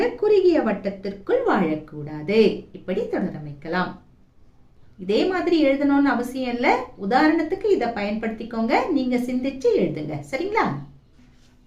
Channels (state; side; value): identical; both; correlation 1.00